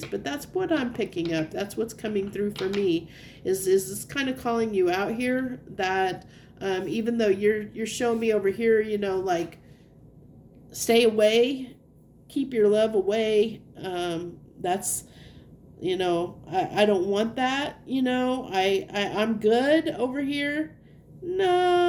But that's what I'm picking up. That's what's coming through for me. Is this kind of calling you out here? That even though you're showing me over here, you know, like stay away, keep your love away. That's, you know, I don't want that. You know, I'm good over here.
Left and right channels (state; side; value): identical; both; correlation 1.00